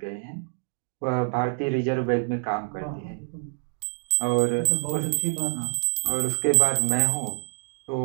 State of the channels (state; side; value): silent; left; digital silence